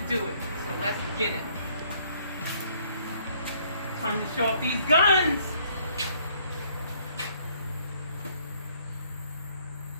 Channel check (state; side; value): inverted; both; correlation -0.64